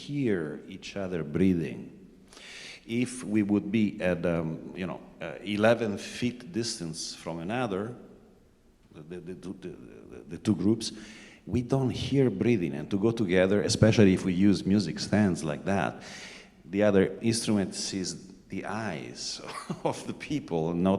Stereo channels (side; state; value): both; identical; correlation 1.00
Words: each other breathing. If we would be at 11 feet distance from another, the 2 groups, we don't hear breathing. And to go together, especially if we use music stands like that, the other instrument sees the eyes of the people,